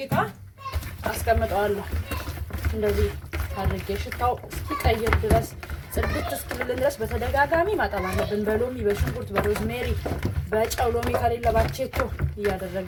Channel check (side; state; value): both; identical; correlation 1.00